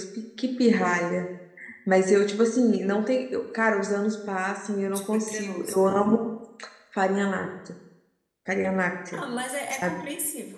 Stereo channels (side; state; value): both; identical; correlation 1.00